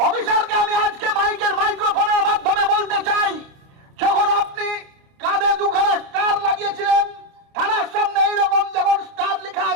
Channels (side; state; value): left; late; 29 ms